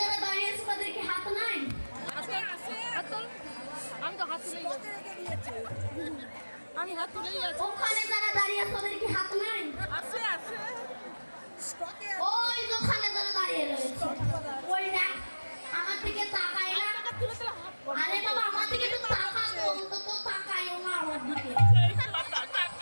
যারা দাঁড়িয়ে আছে তাদের কি হাত নাই? আমি তো হাত তুলেই আছি। আমি হাত তুলেই আছি। ওখানে যারা দাঁড়িয়ে আছে তাদের কি হাত নাই? আছে আছে। ওই ওখানে যারা দাঁড়িয়ে রয়েছে ওই দেখ আমার দিকে তাকায় না। আরে বাবা আমার দিকে তো তাকাও, অন্তত তাকায়ও না আমার দিকে।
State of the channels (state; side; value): inverted; both; correlation -1.00